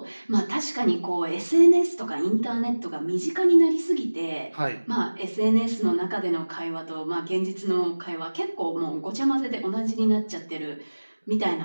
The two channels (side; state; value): both; inverted; correlation -1.00